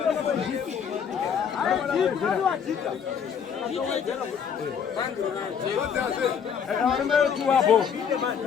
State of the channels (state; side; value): quieter; right; 7.2 dB